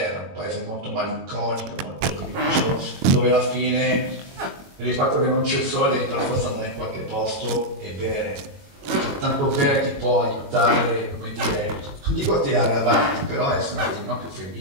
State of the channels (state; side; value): late; left; 22 ms